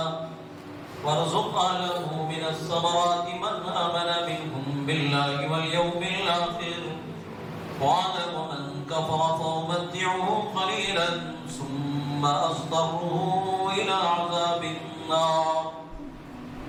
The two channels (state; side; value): identical; both; correlation 1.00